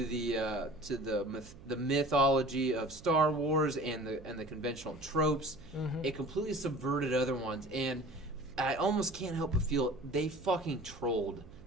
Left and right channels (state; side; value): noise; right; hum, 19 dB below the sound